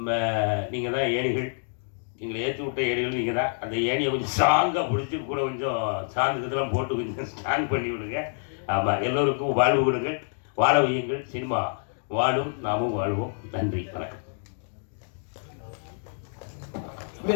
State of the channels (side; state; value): right; silent; digital silence